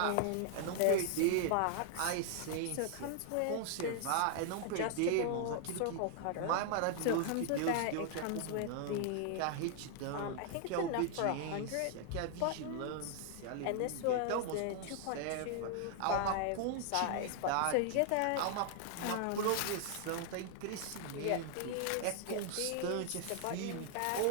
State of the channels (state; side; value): different; both; correlation 0.00